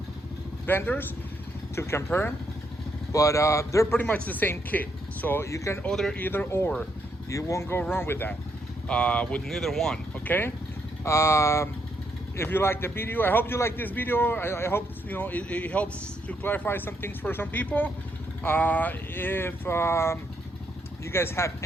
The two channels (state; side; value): normal; both; correlation 0.76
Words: vendors to compare them, but they're pretty much the same kit. So you can order either or. You won't go wrong with that, with neither one, okay? If you like the video, I hope you like this video. I hope it helps to clarify some things for some people. If you guys have